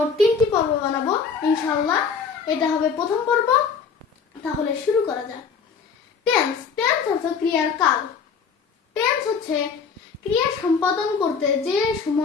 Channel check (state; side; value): quieter; right; 5.9 dB